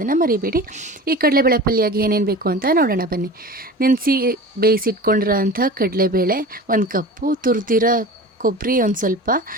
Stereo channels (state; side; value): normal; both; correlation 0.35